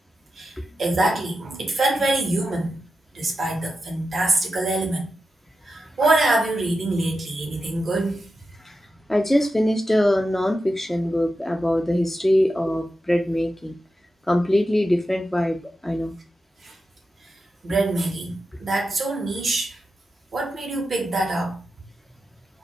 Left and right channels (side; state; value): both; normal; correlation 0.90